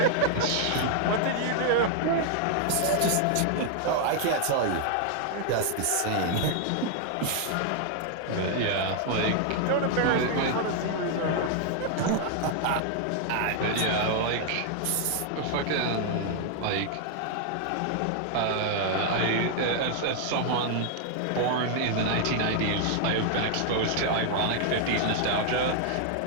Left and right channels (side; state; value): both; different; correlation 0.00